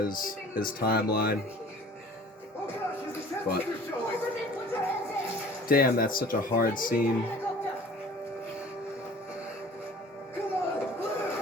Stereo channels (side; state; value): both; normal; correlation 0.47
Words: timeline. But damn, that's such a hard scene.